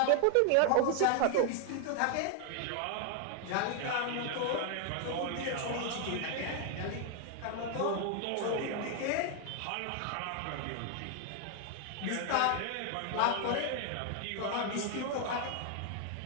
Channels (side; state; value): both; different; correlation 0.00